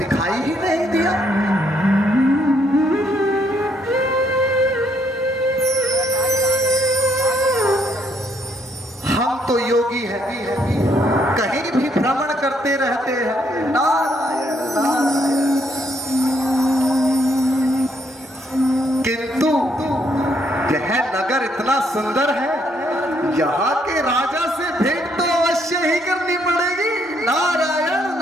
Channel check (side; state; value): both; normal; correlation 0.71